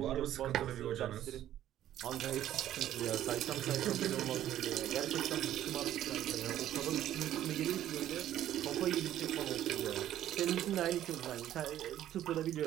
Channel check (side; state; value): left; quieter; 12.2 dB